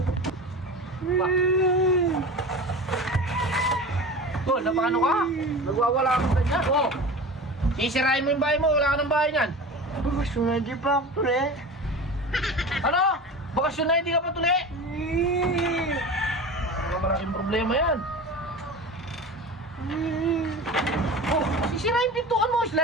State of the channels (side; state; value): both; normal; correlation 0.32